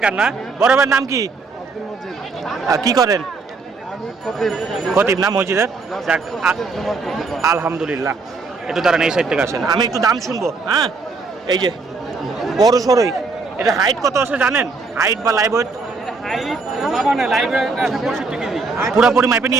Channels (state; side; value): quieter; left; 4.2 dB